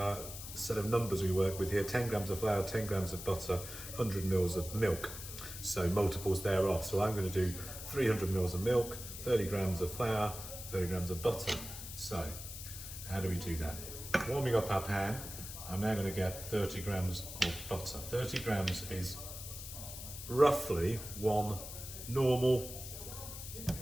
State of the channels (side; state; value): left; noise; hiss, 10 dB below the sound